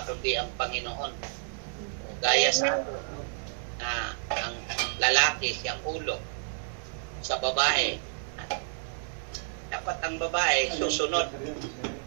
kundi ang Panginoon. O, gaya sa ang lalaki siyang ulo sa babae. Dapat ang babae susunod.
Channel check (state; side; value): silent; left; digital silence